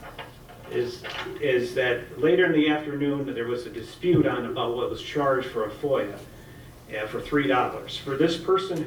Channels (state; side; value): identical; both; correlation 1.00